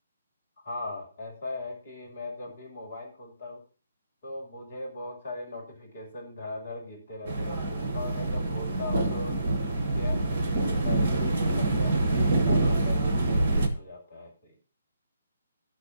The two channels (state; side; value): inverted; both; correlation -0.77